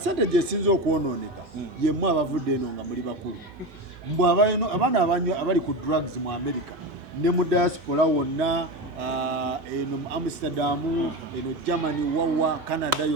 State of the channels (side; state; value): both; normal; correlation 0.21